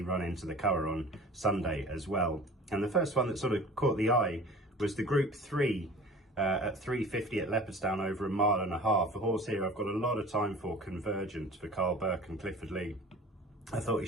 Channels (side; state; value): both; normal; correlation 0.41